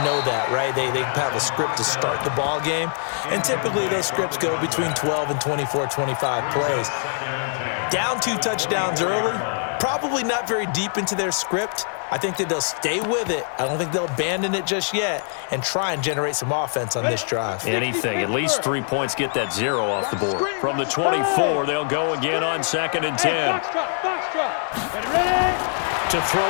know that, right? They have a script to start the ball game, and typically those scripts go between 12 and 24, 25 plays. Down 2 touchdowns early, probably not very deep into their script. I think that they'll stay with it. I don't think they'll abandon it just yet and try and generate some offense on this drive. Anything. At least 3 points get that 0 off the board. From the 24, they'll go again on 2nd and 10. To throw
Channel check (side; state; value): right; silent; digital silence